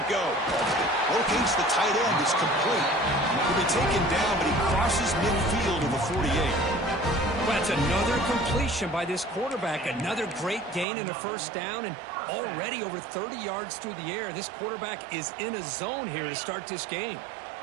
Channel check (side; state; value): left; drops out; at 10.9 s